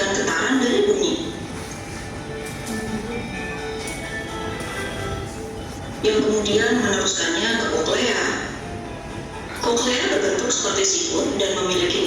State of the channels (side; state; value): both; identical; correlation 1.00